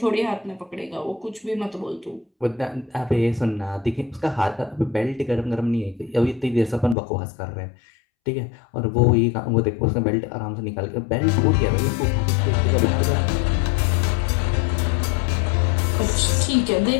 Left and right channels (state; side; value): drops out; right; at 7.0 s